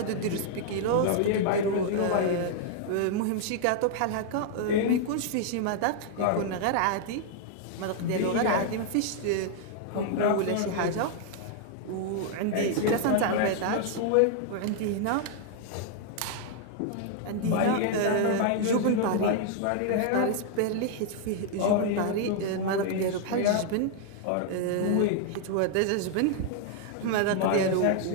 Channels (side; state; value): both; different; correlation 0.00